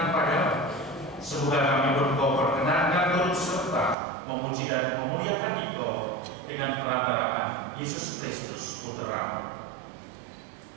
padamu. Semoga kami Engkau perkenankan turut serta memuji dan memuliakan Engkau dengan perantaraan Yesus Kristus Putra.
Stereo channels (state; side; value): drops out; left; at 4.0 s